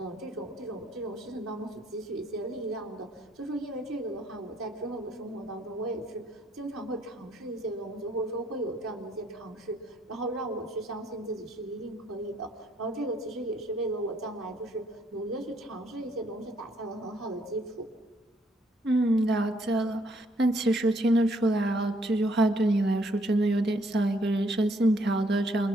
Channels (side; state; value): both; normal; correlation 0.68